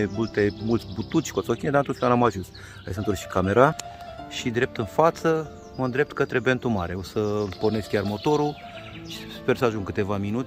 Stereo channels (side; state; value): both; identical; correlation 1.00